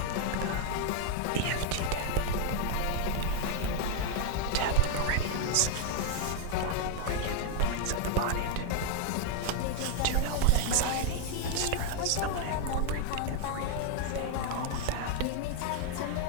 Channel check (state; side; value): different; both; correlation 0.00